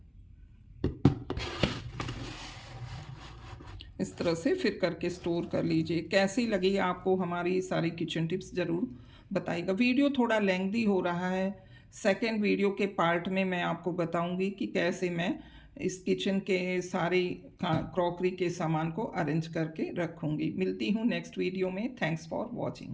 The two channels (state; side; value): identical; both; correlation 1.00